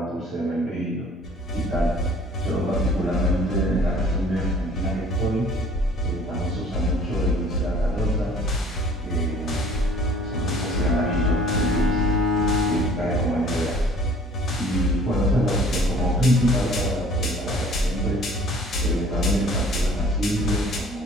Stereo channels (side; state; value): both; normal; correlation 0.52